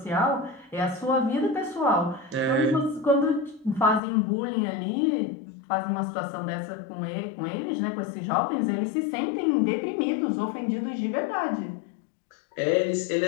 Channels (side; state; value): right; drops out; at 4.0 s